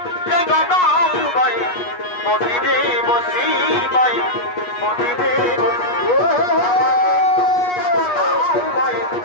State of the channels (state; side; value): late; right; 8.3 ms